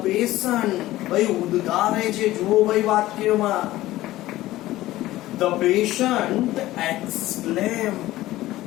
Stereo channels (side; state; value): right; quieter; 16.2 dB